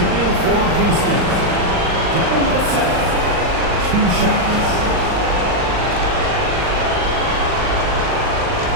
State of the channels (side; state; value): left; late; 39 ms